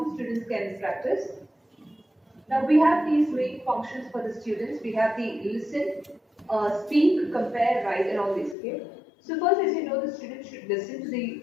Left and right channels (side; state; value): right; drops out; at 8.6 s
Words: the students can practice. Now we have these main functions for the students. We have the listen, speak, compare, write, and all these. Okay. So first, as you know, the students should listen to the